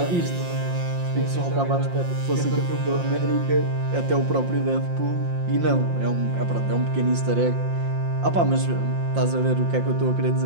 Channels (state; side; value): late; left; 5.7 ms